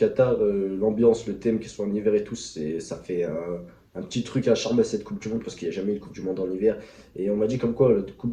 l'ambiance, le thème, qu'ils soient en hiver et tout, ça fait un petit truc à charmer à cette Coupe du Monde parce qu'il n'y a jamais eu de Coupe du Monde en hiver. Et on m'a dit comme quoi la Coupe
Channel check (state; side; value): identical; both; correlation 1.00